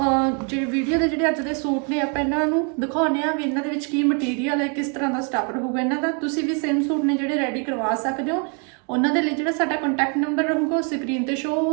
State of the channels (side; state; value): left; quieter; 37.5 dB